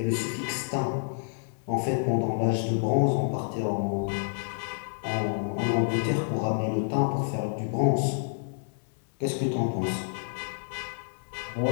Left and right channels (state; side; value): silent; right; 56 dB below the other